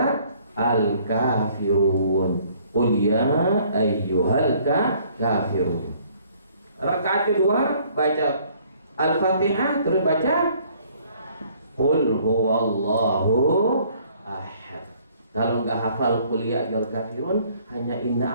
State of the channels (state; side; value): inverted; both; correlation -0.60